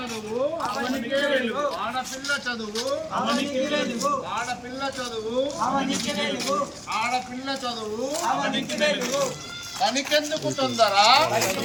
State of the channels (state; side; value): identical; both; correlation 1.00